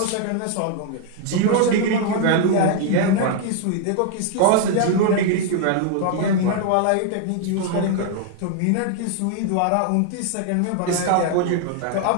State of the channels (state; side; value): different; both; correlation 0.00